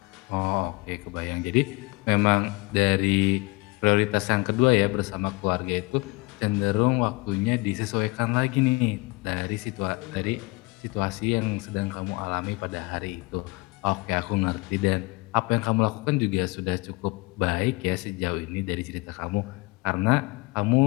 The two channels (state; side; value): quieter; right; 25.1 dB